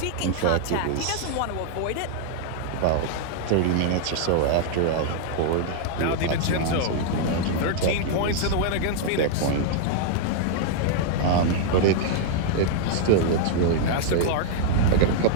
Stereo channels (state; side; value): different; both; correlation -0.01